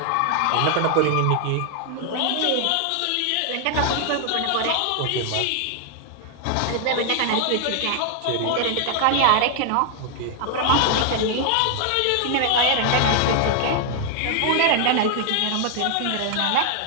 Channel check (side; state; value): both; different; correlation 0.00